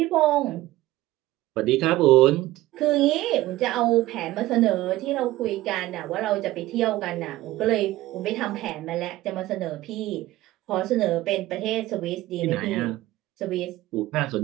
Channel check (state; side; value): quieter; left; 16.7 dB